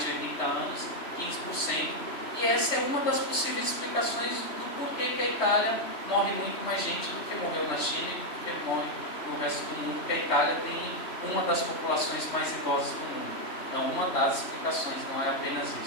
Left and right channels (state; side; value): late; right; 3.1 ms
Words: de 80 anos, 15%. E essa é uma das possíveis explicações do porquê que a Itália morre muito mais gente do que morreu na China e do que morre no resto do mundo, porque a Itália tem uma das populações mais idosas do mundo. Então, uma das explicações, não é apenas